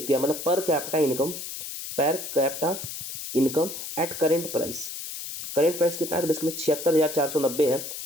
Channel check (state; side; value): noise; left; hiss, 8 dB below the sound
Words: मतलब per capita income eight current price कितना है? तो बेसिकली 76,490 है,